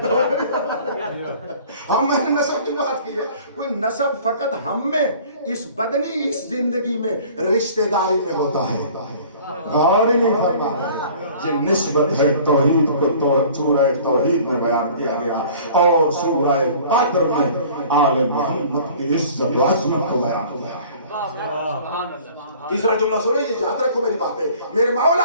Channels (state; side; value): inverted; both; correlation -0.49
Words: ہم میں نے نسب کی بات کی ہے. کوئی نسب فقط ہم میں اس بدنی اس زندگی میں رشتہ داری میں ہوتا ہے. غور ہی نہیں فرما رہے. یہ نسبت ہے توحید کو سورہ توحید میں بیان کیا گیا اور سورہ قدر میں آل محمد کی عزت و عظمت کو بیان کیا ہے. تیسرا جملہ سنو, یہ یاد رکھو میری بات ہے. میرے مولا